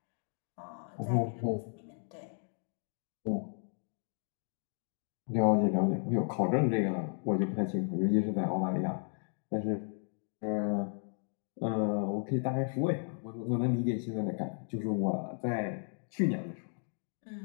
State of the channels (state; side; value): silent; right; 55 dB below the other